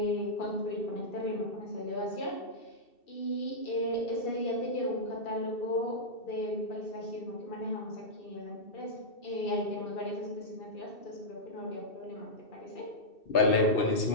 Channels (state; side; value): late; right; 2.7 ms